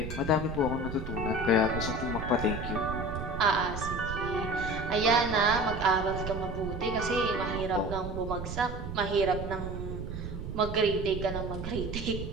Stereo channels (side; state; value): right; noise; rumble, 7 dB below the sound